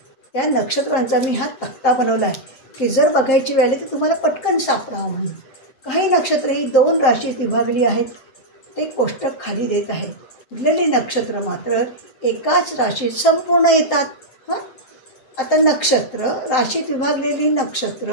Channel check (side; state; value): right; late; 7.6 ms